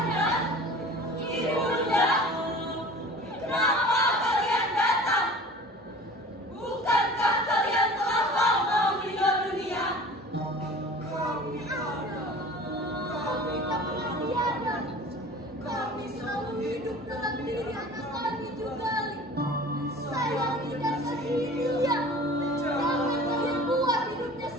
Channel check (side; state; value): both; normal; correlation 0.42